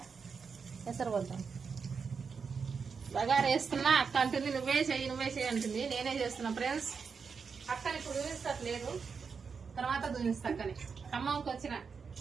ఎసరు పోతాం. బగారా వేస్తున్నా అక్క అంటుంది నువ్వే చెయ్యి అంటుంది. నేనే చేస్తున్నా ఫ్రెండ్స్. అక్కని ఇప్పుడు చూపిస్తట్లేదు, తర్వాత చూపిస్తా. అక్కని ఖమ్మంకి వచ్చిన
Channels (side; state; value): left; quieter; 5.6 dB